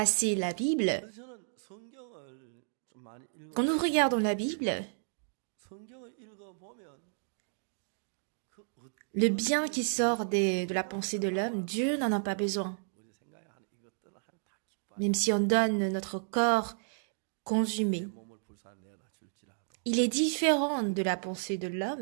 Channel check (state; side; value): silent; left; digital silence